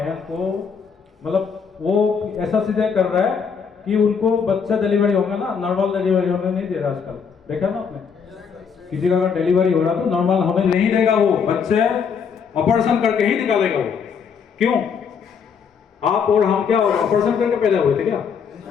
को मतलब वो ऐसा सीधे कर रहा है कि उनको बच्चा डिलीवरी होगा ना, नॉर्मल डिलीवरी होने नहीं दे रहा आजकल। देखा ना आपने, किसी का अगर डिलीवरी हो रहा तो नॉर्मल होने नहीं देगा, वो बच्चे ऑपरेशन करके ही निकालेगा वो। क्यों? आप और हम क्या ऑपरेशन करके पैदा हुए थे क्या?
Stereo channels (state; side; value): quieter; right; 6.4 dB